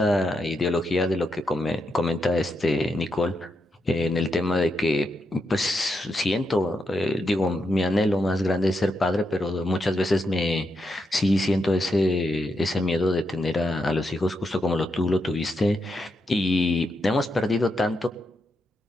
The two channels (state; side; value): normal; both; correlation 0.83